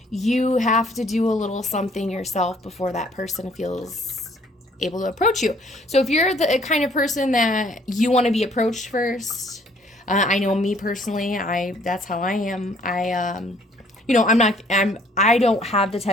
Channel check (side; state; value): both; normal; correlation 0.60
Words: you have to do a little something yourself before that person feels able to approach you. So if you're the kind of person that you want to be approached first, I know me personally, that's how I am. I don't have the